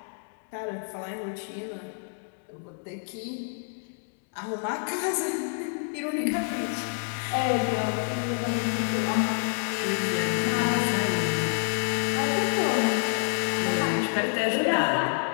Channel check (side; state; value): right; silent; digital silence